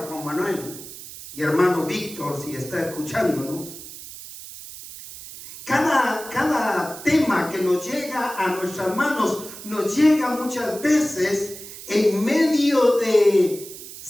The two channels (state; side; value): noise; right; hiss, 14 dB below the sound